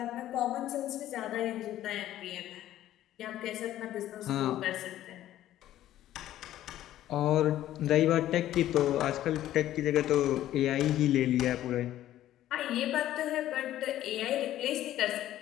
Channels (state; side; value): quieter; right; 13.1 dB